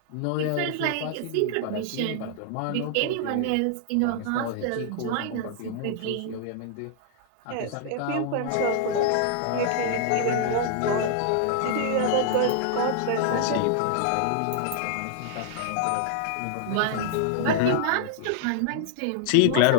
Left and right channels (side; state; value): both; different; correlation -0.01